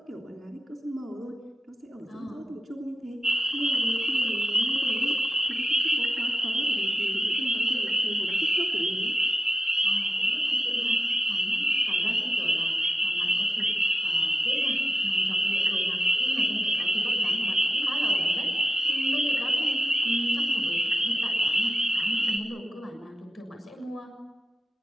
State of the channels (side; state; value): both; normal; correlation 0.90